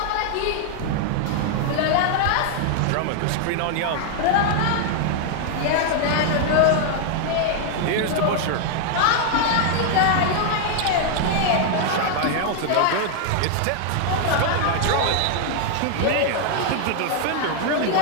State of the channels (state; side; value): different; both; correlation 0.00